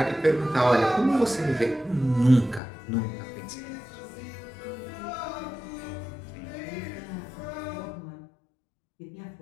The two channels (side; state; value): right; drops out; at 2.6 s